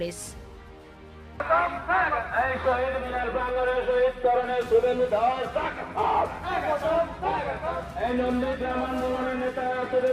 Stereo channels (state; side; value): identical; both; correlation 1.00